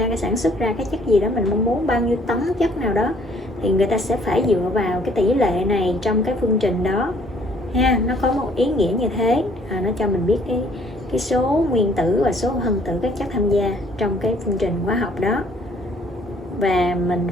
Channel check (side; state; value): both; normal; correlation 0.60